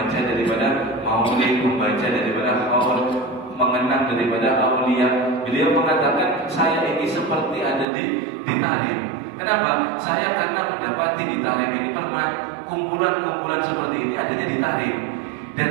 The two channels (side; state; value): left; drops out; at 7.9 s